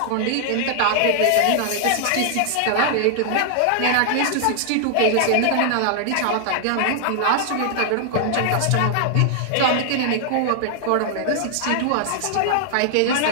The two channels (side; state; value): both; different; correlation -0.01